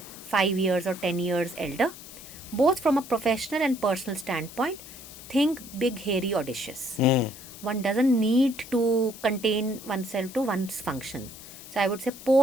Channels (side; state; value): left; noise; hiss, 15 dB below the sound